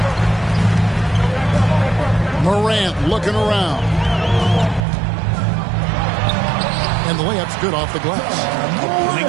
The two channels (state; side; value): drops out; left; at 4.8 s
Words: Morant looking around. And the layup's good off the glass. A